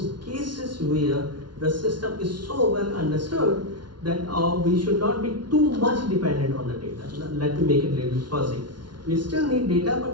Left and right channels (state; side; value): late; left; 0.71 ms